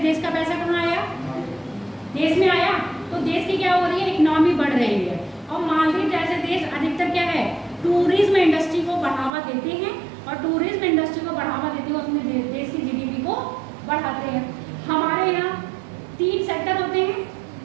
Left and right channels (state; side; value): drops out; left; at 9.3 s